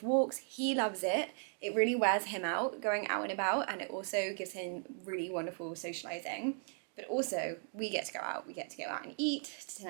walks. He loves it. It really wears him out going out and about, and it also gives him really wonderful socializing. But also we get to go out. We get to go out and eat to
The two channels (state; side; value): silent; left; 53 dB below the other